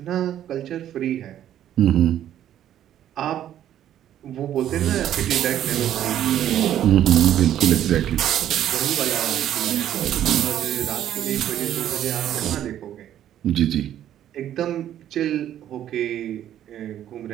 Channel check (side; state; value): left; quieter; 11.3 dB